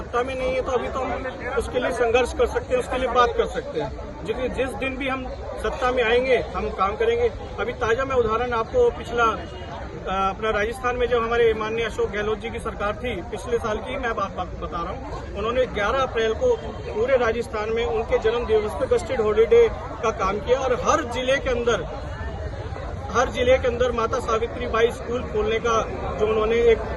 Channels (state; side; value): identical; both; correlation 1.00